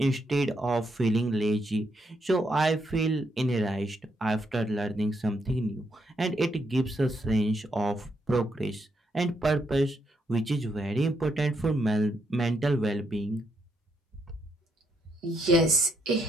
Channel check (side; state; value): both; normal; correlation 0.77